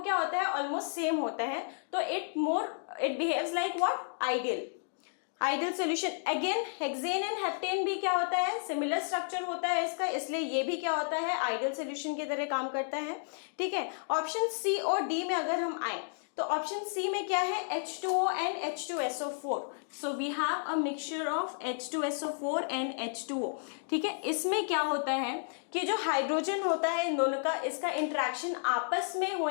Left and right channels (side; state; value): right; silent; digital silence